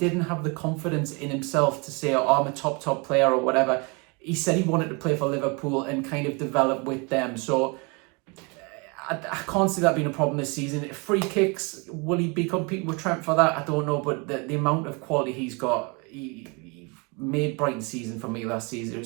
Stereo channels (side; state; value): left; quieter; 30.6 dB